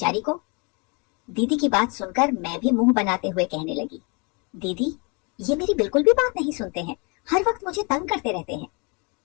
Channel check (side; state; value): right; quieter; 31.6 dB